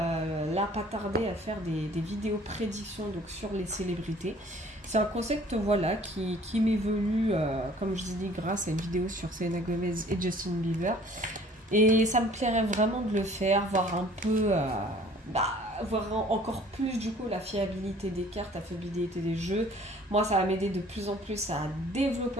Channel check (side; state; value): both; normal; correlation 0.53